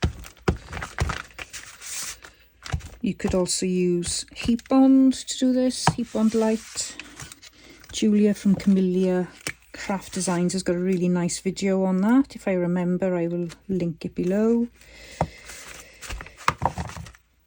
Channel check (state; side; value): identical; both; correlation 1.00